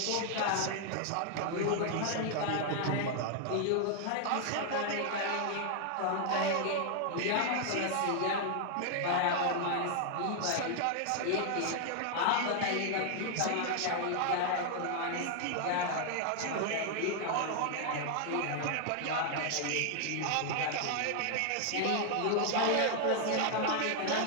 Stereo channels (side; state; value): both; different; correlation 0.00